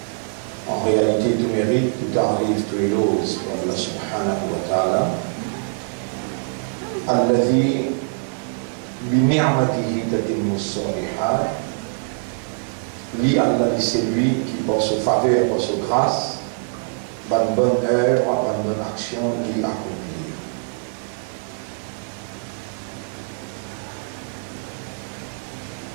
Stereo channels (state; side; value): silent; left; digital silence